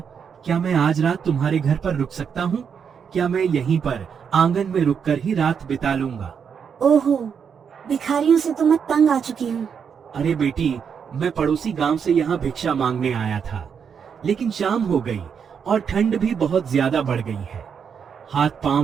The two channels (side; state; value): left; quieter; 7.0 dB